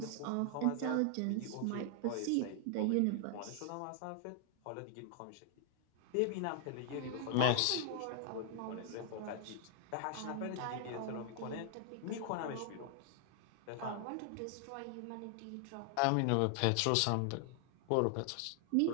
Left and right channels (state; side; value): different; both; correlation 0.00